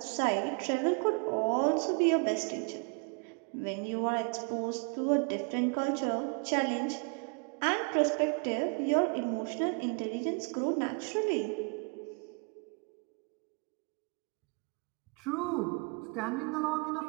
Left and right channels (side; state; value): left; quieter; 35.1 dB